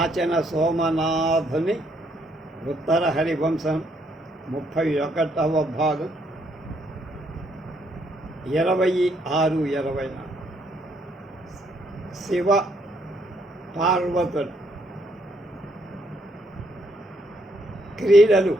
సోమనాథుని ఉత్తర హరివంశం 31వ భాగం 26-24 శివ పార్వతుడు క్రీడలు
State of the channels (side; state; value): both; normal; correlation 0.72